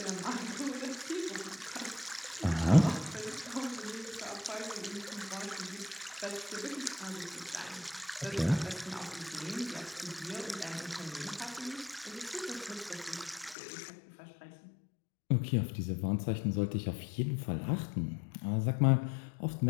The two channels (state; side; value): drops out; right; at 13.6 s